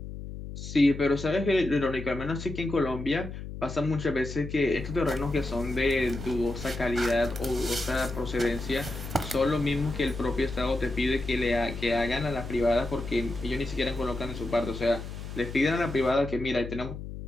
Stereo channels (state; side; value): noise; left; hum, 9 dB below the sound